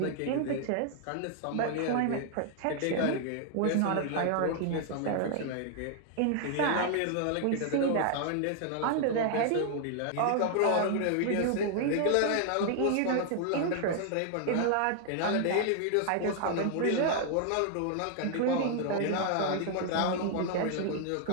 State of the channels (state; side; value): different; both; correlation 0.00